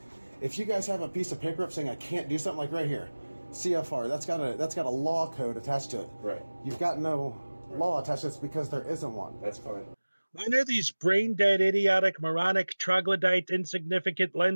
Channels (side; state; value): both; inverted; correlation -1.00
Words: if you guys have a piece of paper up saying I can't do something, like right here, CFR, that's got a law code attached to it. Right. You've got no law attached to it because there isn't one. That's fine. When are these brain-dead, idiotic, moronic, troglodyte, insignificant,